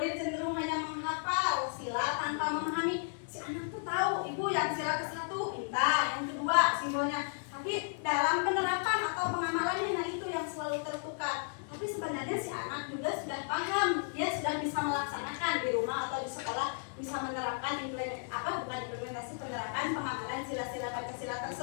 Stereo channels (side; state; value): right; silent; 55 dB below the other